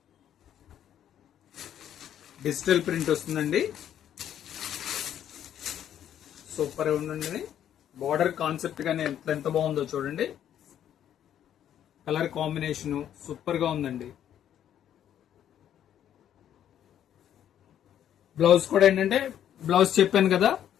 డిజిటల్ ప్రింట్ వస్తుందండి. సూపర్ గా ఉందండి. బార్డర్ కాన్సెప్ట్ గానే ఎంత బాగుందో చూడండి. కలర్ కాంబినేషన్ సూపర్ గా ఉందండి. బ్లౌజ్ కూడా ఏంటంటే, బ్లౌజ్ చెప్పాను కదా,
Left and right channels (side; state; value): right; quieter; 10.3 dB